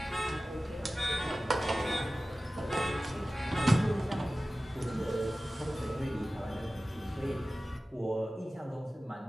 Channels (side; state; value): both; normal; correlation 0.96